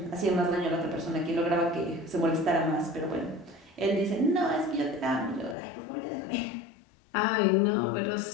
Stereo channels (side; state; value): right; drops out; at 5.6 s